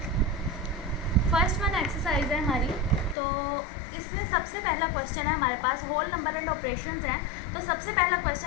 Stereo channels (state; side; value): drops out; right; at 3.2 s